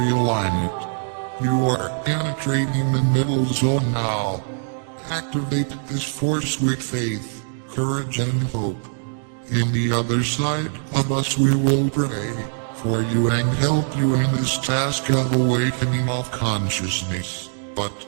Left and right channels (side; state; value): left; silent; digital silence